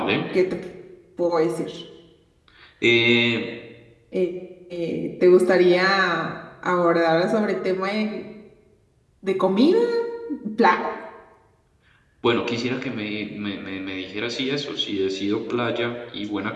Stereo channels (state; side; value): identical; both; correlation 1.00